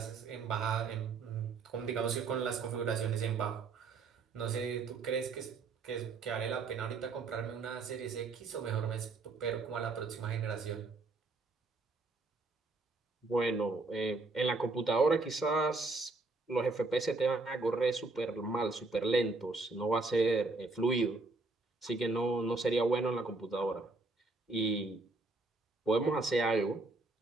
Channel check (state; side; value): quieter; left; 3.7 dB